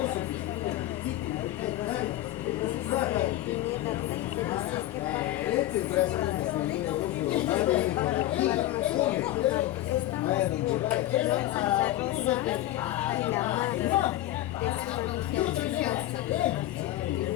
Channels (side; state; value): right; quieter; 14.7 dB